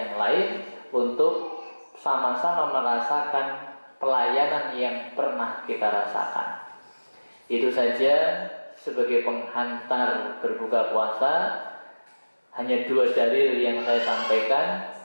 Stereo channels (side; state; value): both; inverted; correlation -1.00